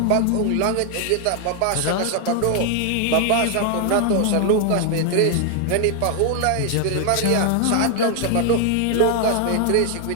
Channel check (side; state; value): both; different; correlation 0.00